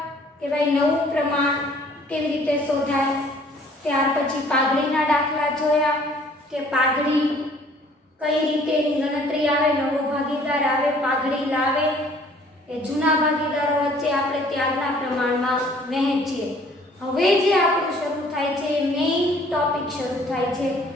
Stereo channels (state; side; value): normal; both; correlation 0.56